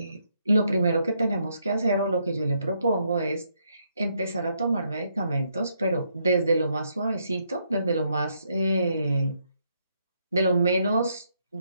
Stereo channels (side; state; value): both; inverted; correlation -0.75